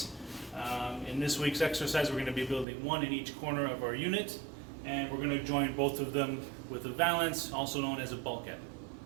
In this week's exercise, we're going to be building one in each corner of our unit, and we're going to join both of them with a valance, also known as a bulkhead.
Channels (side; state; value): left; drops out; at 2.7 s